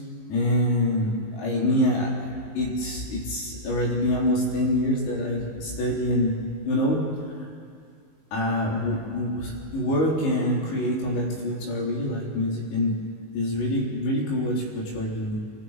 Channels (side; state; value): right; late; 19 ms